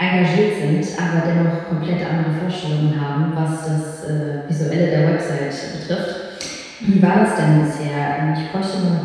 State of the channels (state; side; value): identical; both; correlation 1.00